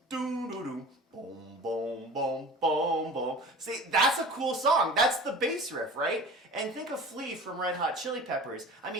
doom doom doom boom boom boom boom boom. See, that's a cool song. That's the bass riff, right? And think of Flea from Red Hot Chili Peppers. I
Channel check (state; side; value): normal; both; correlation 0.39